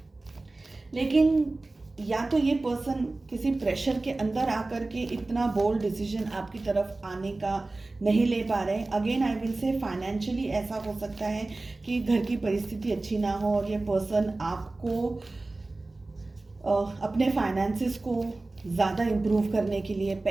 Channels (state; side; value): quieter; left; 3.1 dB